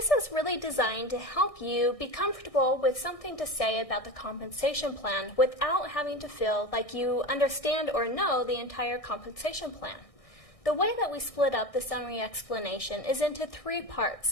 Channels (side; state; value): right; late; 1.6 ms